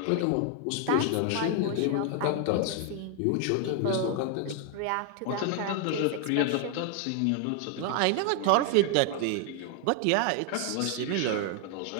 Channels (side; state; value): both; different; correlation 0.00